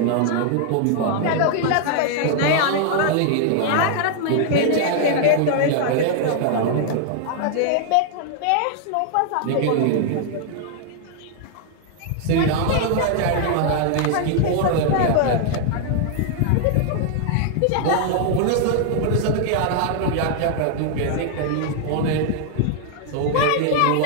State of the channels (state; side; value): different; both; correlation 0.00